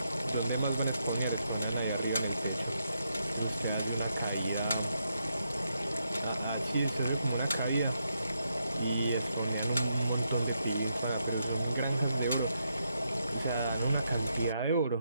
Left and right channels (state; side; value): inverted; both; correlation -0.81